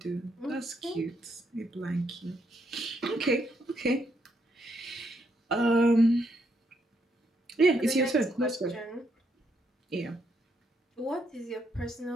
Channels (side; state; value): both; normal; correlation 0.76